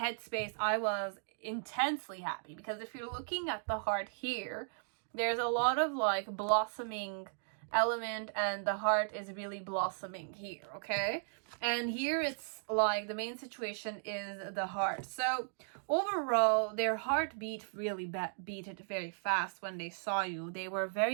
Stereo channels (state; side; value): silent; left; digital silence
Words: I was intensely happy, because if you're looking at the heart here, there's a lot of like blossoming element, and the heart is really blossoming here, okay? And here it's like the main situation is the heart. So overall, their heart beat really beat it very fast when they saw you. They were